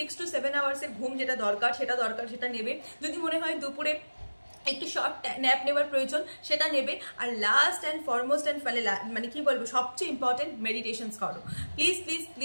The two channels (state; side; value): inverted; both; correlation -1.00